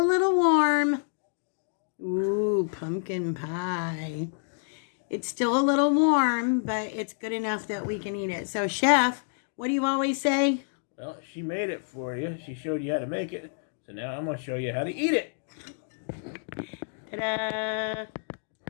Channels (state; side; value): silent; right; digital silence